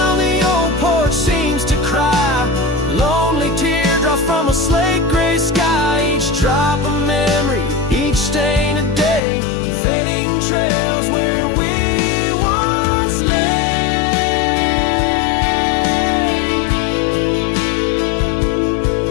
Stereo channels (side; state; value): right; drops out; at 9.2 s